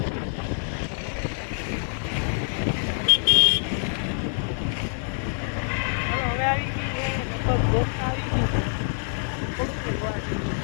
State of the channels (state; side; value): silent; right; digital silence